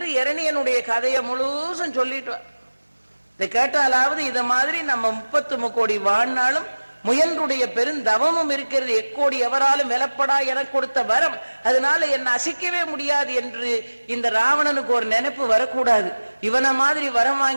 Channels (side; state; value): both; inverted; correlation -1.00